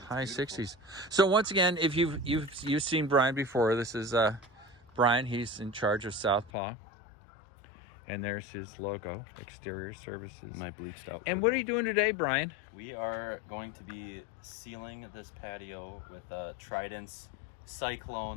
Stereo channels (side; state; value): right; drops out; at 6.5 s